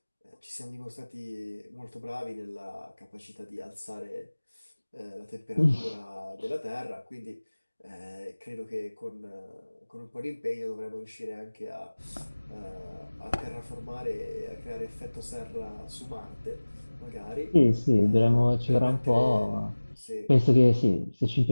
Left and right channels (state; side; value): inverted; both; correlation -1.00